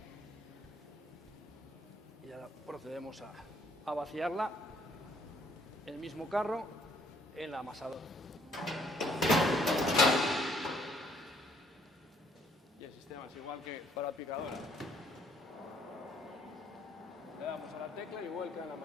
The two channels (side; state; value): both; normal; correlation 0.66